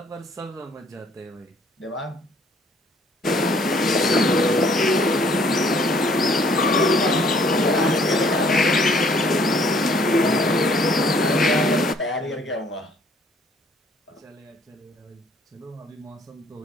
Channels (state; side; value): normal; both; correlation 0.60